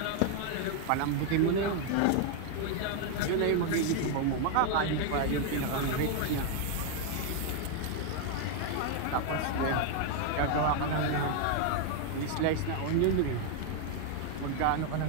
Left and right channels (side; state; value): both; different; correlation 0.01